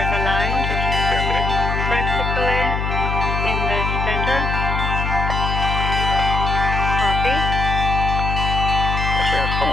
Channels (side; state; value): left; noise; hum, 1 dB below the sound